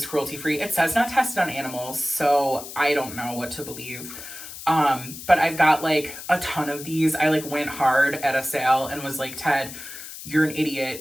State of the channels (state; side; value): noise; left; hiss, 12 dB below the sound